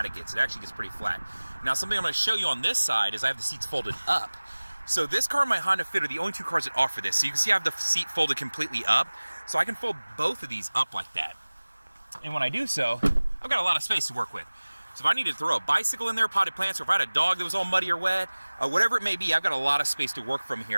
it gets. It actually gets pretty flat. Now something I'm going to show you on this side is I have the seats folded up. So this car and my Honda Fit are the only two cars that offer this. So you can see I have the seat folded completely up. So I can fold both of these up like that. And when I do so, I've got a lot of space to work with. So if I need to throw a bicycle in there, potted plants, or if I had a dog that was all muddy or wet, whatever it may be, I've got a lot of space to work from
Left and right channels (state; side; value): inverted; both; correlation -1.00